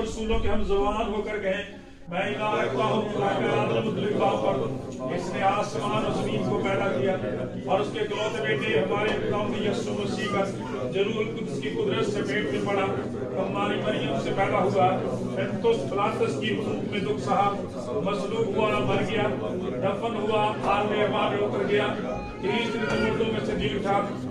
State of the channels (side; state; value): both; identical; correlation 1.00